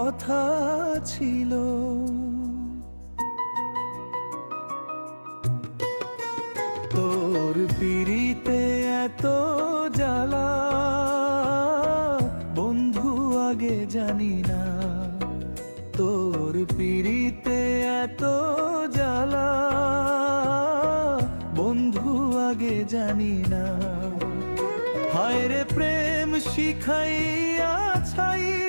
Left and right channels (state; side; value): inverted; both; correlation -1.00